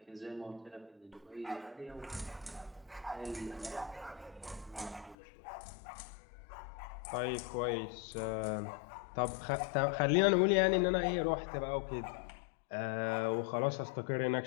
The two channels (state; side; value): drops out; right; at 5.2 s